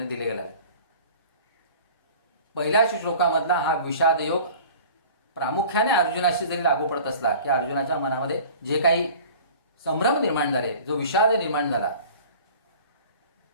दिला गेला आहे. पहिल्या श्लोकामधला हा विषाद योग प्रामुख्याने अर्जुनाशी जरी लागू पडत असला की अर्जुनाच्या मनामध्ये जे काही संभ्रम निर्माण झाले, जो विषाद निर्माण झाला,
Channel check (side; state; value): both; inverted; correlation -0.44